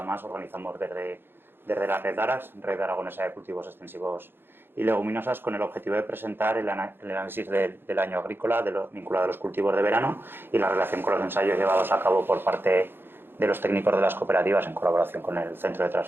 más organizamos desde la Red Arax, Red Aragonesa de Cultivos Extensivos y Leguminosas, con el objetivo de presentar el análisis del año agrícola vinculado a los cultivos de verano y la relación con los ensayos llevados a cabo por parte de los técnicos de las cooperativas en colaboración con el Centro de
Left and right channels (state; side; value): late; left; 0.10 ms